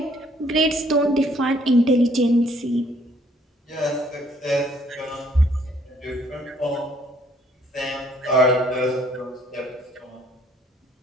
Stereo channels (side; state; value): both; normal; correlation 0.63